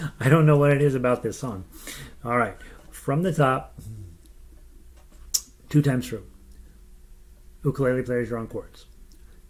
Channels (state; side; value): identical; both; correlation 1.00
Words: I don't know what it is about this song. All right, from the top, 2 times through. Ukulele players, you're on chords.